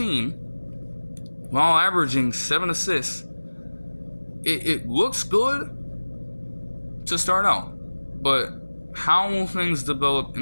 while averaging 7 assists, it looks good to start out. But how will things develop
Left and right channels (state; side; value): inverted; both; correlation -1.00